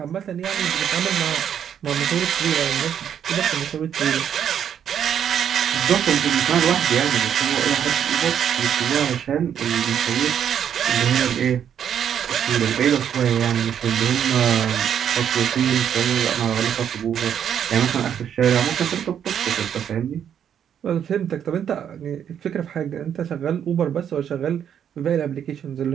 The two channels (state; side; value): quieter; left; 8.9 dB